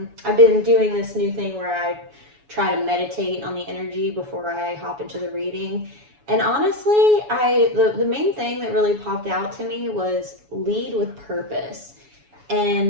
been doing this new thing where I try to meditate on the energy before I hop into the reading. And honestly, the main thing that really popped out to me was lead with purpose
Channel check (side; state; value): left; late; 7.1 ms